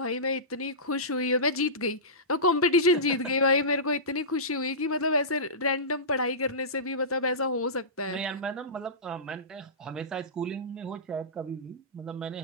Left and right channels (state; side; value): normal; both; correlation -0.20